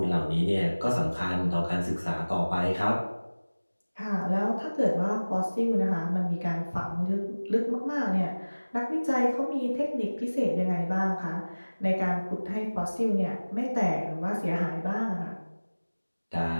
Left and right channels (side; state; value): both; inverted; correlation -1.00